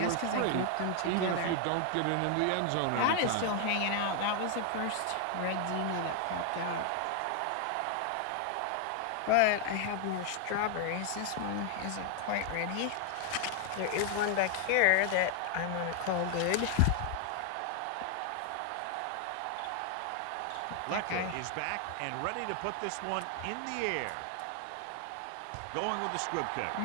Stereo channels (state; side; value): different; both; correlation 0.00